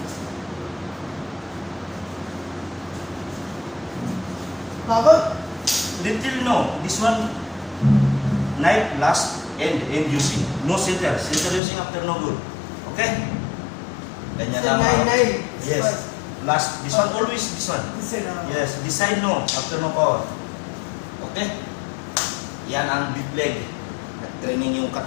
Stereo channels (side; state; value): right; drops out; at 11.6 s